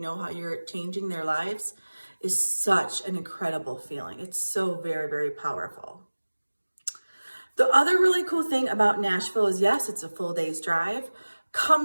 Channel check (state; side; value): inverted; both; correlation -1.00